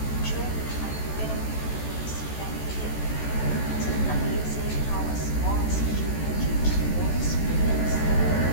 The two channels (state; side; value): late; right; 14 ms